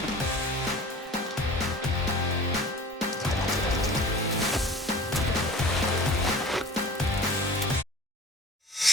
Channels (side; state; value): both; normal; correlation 0.42